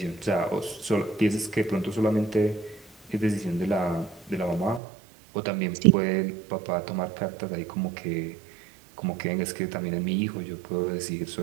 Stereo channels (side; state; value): left; drops out; at 4.8 s